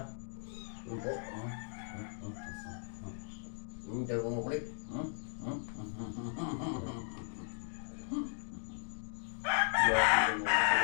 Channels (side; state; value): right; silent; digital silence